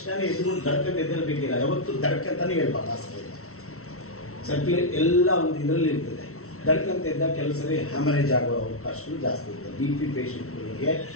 ಎದುರು ದಡ್ಕಂತ ಎದ್ದೇಳಬೇಕಿಲ್ಲ, ಯಾವತ್ತು ದಡ್ಕಂತಾನೆ ಹೇಳ್ಬಾರ್ದು. ಹಾಸಿಗೆ ಸರ್ಕ್ಯುಲೇಟ್ ಎಲ್ಲ ಒಂದು ಇದರಲ್ಲಿ ಇರ್ತದೆ. ದಡ್ಕಂತ ಎದ್ದ ಕೆಲಸವೇ ಹ್ಯಾಮರೇಜ್ ಆಗೋ ಅವಕಾಶಗಳು ಜಾಸ್ತಿ ಇರ್ತದೆ. BP ಪೇಷಂಟ್ಗಳಿಗೆ,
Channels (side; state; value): right; late; 0.63 ms